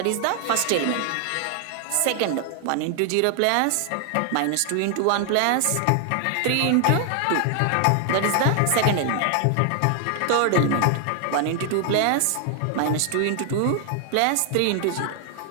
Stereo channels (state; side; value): different; both; correlation 0.00